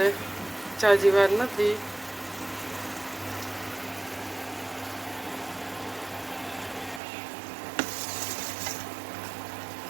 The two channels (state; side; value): drops out; left; at 7.0 s